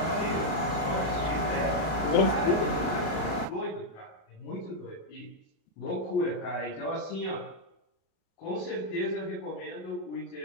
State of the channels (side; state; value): right; late; 37 ms